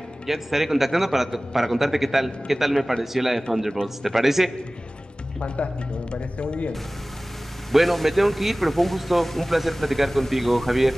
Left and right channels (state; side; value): normal; both; correlation 0.98